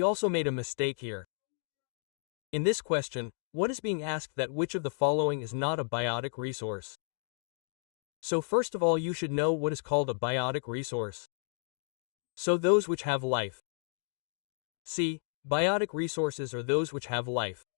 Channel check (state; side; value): silent; right; digital silence